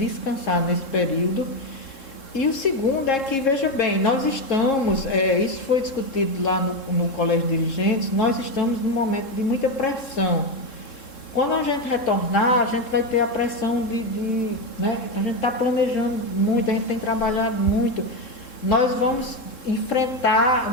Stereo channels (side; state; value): right; late; 3.7 ms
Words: nesse período. E o segundo é que, veja bem, nós estamos, isso foi discutido lá no Colégio de Dirigentes, nós estamos num momento de muita pressão. Quando a gente retornar, a gente vai ter a pressão né? A gente está planejando muito, a gente tem trabalhado muito. Nós vamos enfrentar,